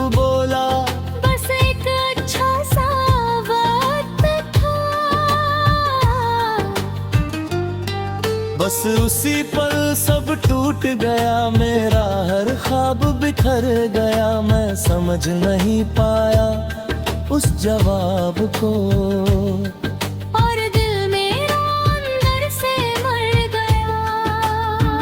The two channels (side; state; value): both; identical; correlation 1.00